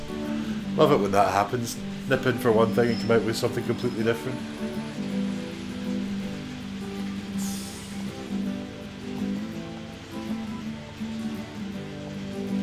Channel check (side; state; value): both; identical; correlation 1.00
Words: Love it when that happens. Nip in for one thing and come out with something completely different.